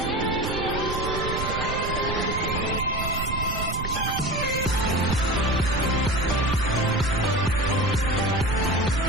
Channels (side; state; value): right; noise; rumble, 5 dB below the sound